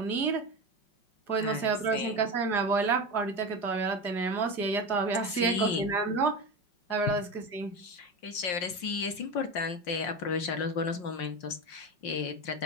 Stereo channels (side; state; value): right; late; 5.6 ms